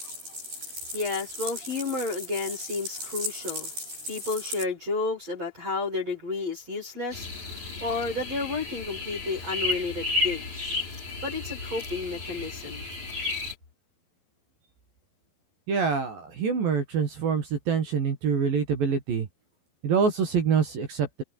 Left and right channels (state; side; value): late; left; 11 ms